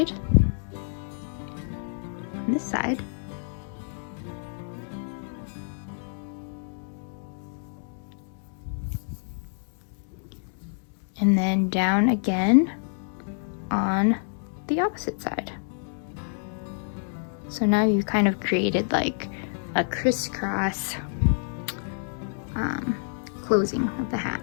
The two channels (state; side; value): silent; right; digital silence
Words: and then down again on the opposite side. So now you've kind of created like a crisscross closing of the hat.